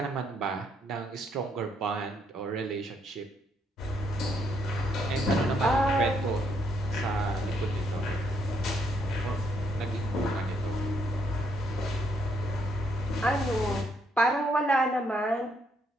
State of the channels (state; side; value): normal; both; correlation 0.73